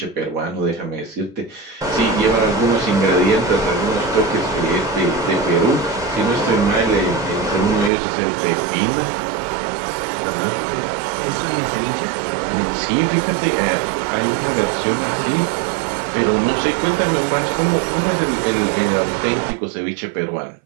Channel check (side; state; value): left; drops out; at 7.9 s